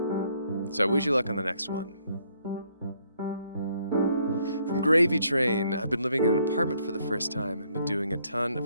So I wish you luck on the next one. From Gravy Train, I've been living in an apartment for the first time and been doing a ton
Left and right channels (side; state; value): both; inverted; correlation -0.69